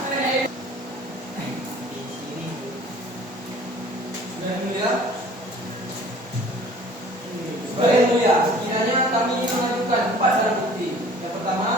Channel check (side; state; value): both; normal; correlation 0.50